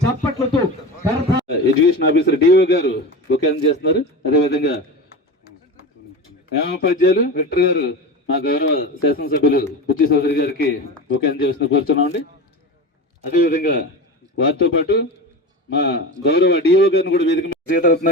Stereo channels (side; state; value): both; normal; correlation 0.27